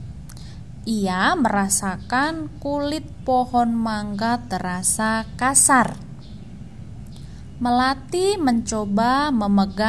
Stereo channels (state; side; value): identical; both; correlation 1.00